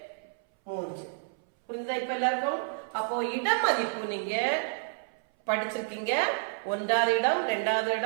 3. புரியுதா இப்ப எல்லாருக்கும்? அப்போ இடம் மதிப்பு நீங்க படிச்சிருக்கீங்க. 1வது இடம், 2வது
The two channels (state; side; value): silent; left; 58 dB below the other